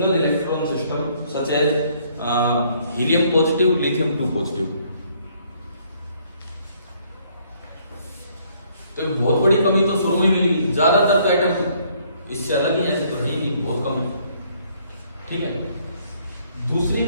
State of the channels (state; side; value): inverted; both; correlation -0.65